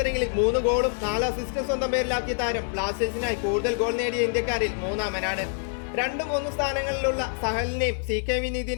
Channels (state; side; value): silent; right; 61 dB below the other